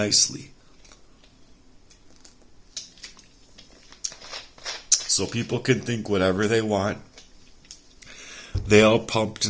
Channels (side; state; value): both; identical; correlation 1.00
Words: So people can think whatever they want. They all pumped